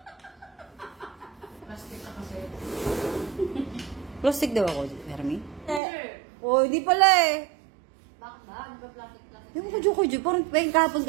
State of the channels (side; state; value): left; drops out; at 5.8 s